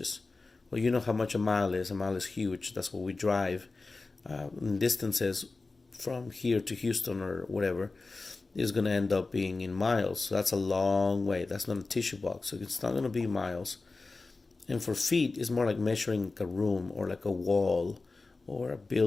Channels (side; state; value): right; quieter; 3.6 dB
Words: Well, you know how much a mile is. A mile is huge. That's what we drive. Distances from here to Houston or whatever is going to end up being in miles. So that's a long way. That's not a tissue box. So it's not going to be miles. And for feet, it's more like measuring a room or like a wall or a